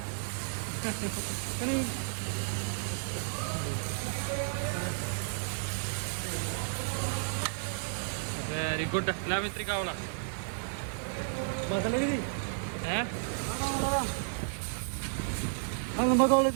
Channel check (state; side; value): silent; left; digital silence